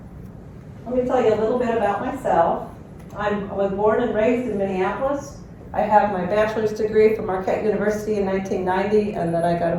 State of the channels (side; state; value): both; identical; correlation 1.00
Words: Let me tell you a little bit about myself. I was born and raised in Minneapolis. I have my bachelor's degree from Marquette University in 1990, and then I got a